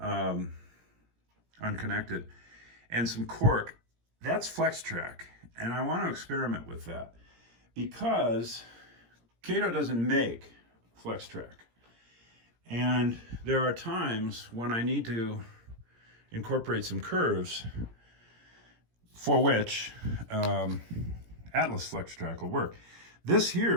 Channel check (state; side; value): late; left; 17 ms